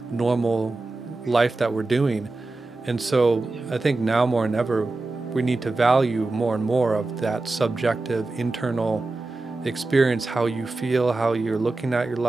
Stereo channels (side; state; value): left; quieter; 3.2 dB